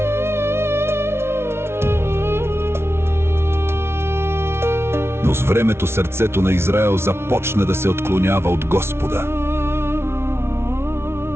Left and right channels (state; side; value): late; left; 0.12 ms